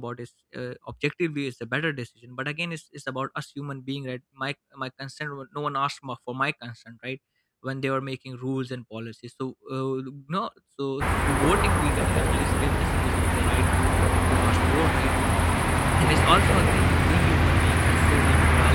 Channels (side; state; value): both; identical; correlation 1.00